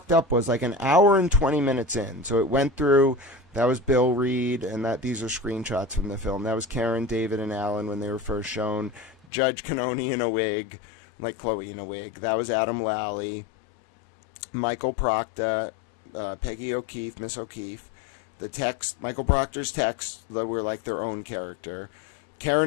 up was like an hour and 20 minutes in. So it went through, that was Bill Reed, and these are screenshots from the film. That was Karen, David, and Alan when they were first shown. Judge Cannoni in a wig, like Chloe in a wig. That was Adam Lally. Michael Proctor, Peggy O'Keefe, Miss O'Keefe. The text, Michael Proctor's texts that were like their own character.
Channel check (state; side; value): drops out; right; at 9.2 s